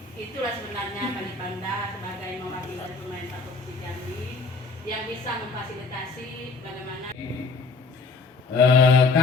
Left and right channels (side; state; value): right; quieter; 4.0 dB